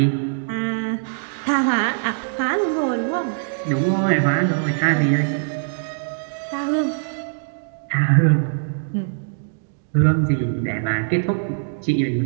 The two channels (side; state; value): left; silent; digital silence